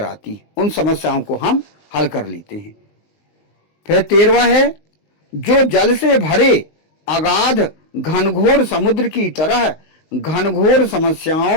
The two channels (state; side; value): late; right; 19 ms